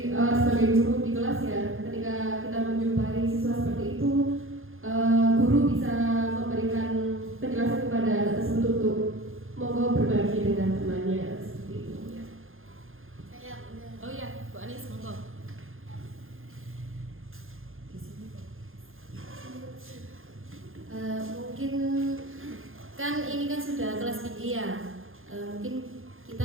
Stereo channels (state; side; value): late; left; 0.60 ms